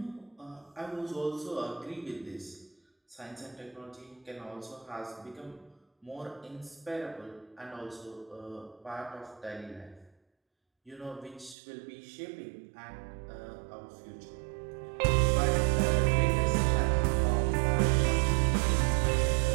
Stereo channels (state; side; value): drops out; left; at 11.6 s